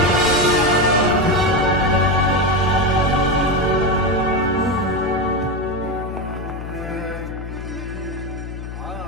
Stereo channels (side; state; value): left; noise; hum, 9 dB below the sound